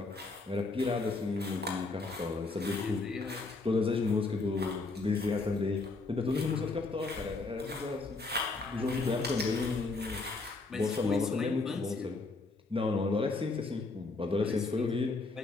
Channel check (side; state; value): right; quieter; 3.6 dB